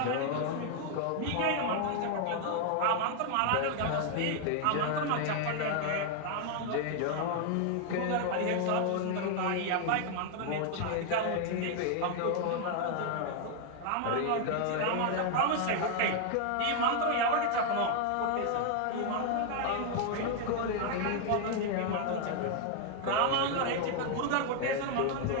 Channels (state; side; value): different; both; correlation 0.00